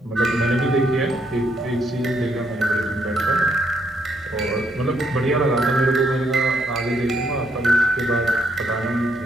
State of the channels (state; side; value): normal; both; correlation 0.73